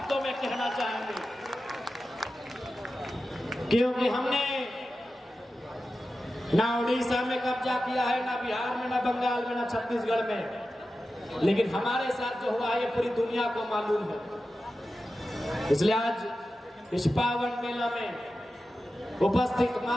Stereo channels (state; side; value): normal; both; correlation 0.93